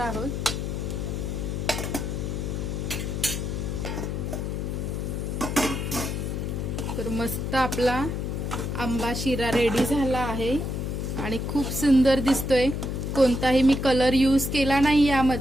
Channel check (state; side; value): noise; left; hum, 2 dB below the sound